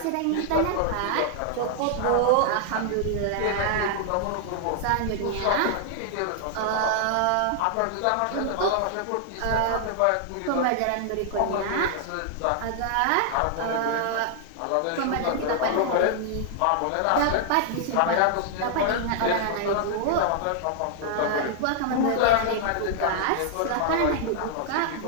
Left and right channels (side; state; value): both; different; correlation 0.00